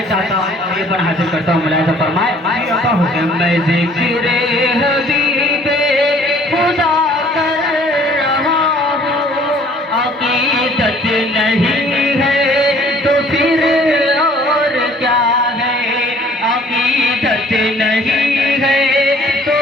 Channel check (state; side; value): normal; both; correlation 0.56